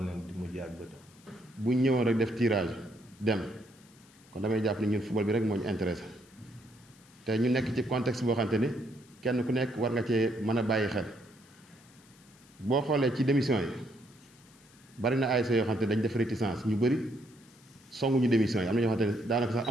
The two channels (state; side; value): noise; left; hiss, 27 dB below the sound